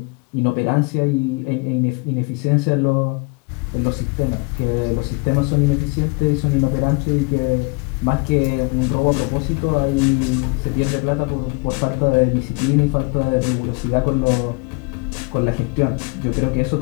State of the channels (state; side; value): quieter; right; 29.4 dB